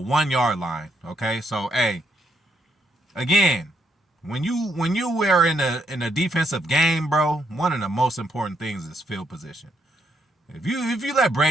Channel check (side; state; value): both; normal; correlation 0.75